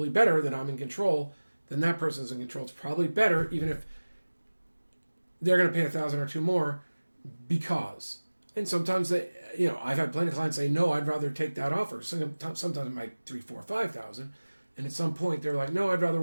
better that I'm in control than that person's in control. It's probably better, even if they're going to pay $1,000 or $2 more, because. And sometimes I've had plenty of clients say, no, I'd rather take that offer. Sometimes it might $3,000, $4,000, $5,000, and at some point they're like, no, I'd rather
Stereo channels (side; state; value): both; inverted; correlation -1.00